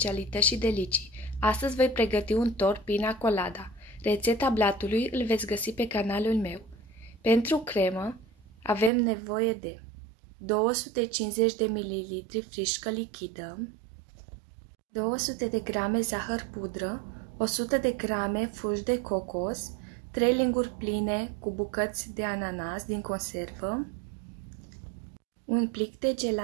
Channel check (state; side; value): drops out; left; at 8.9 s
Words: și delicii. Astăzi voi pregăti un tort pina colada. Rețeta blatului îl veți găsi pe canalul meu. Pentru cremă avem nevoie de 250 de ml frișcă lichidă, 200 de grame zahăr pudră, 100 de grame fulgi de cocos, 3 linguri pline cu bucăți de ananas din conservă, un plic de